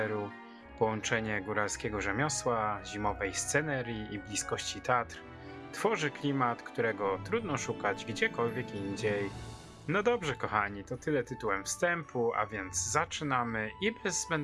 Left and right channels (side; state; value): both; identical; correlation 1.00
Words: Połączenie góralskiego rzemiosła, zimowej scenerii i bliskości Tatr tworzy klimat, którego trudno szukać gdziekolwiek indziej. No dobrze kochani, to tyle tytułem wstępu, a więc zaczynamy i bez